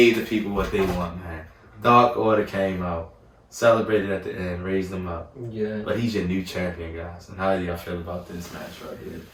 the people what they want, man. Dark Order came out. celebrated at the end, raised him up. Yeah. But he's your new champion, guys. And how do y'all feel about this match right here?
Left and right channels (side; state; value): both; identical; correlation 1.00